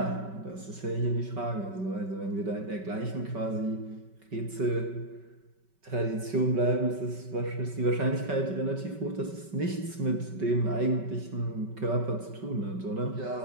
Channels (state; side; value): late; left; 5.3 ms